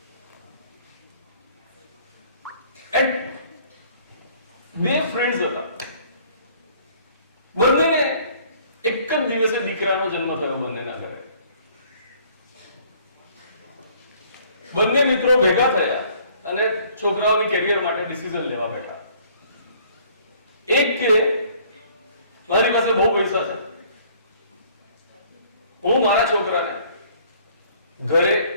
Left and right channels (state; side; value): inverted; both; correlation -0.58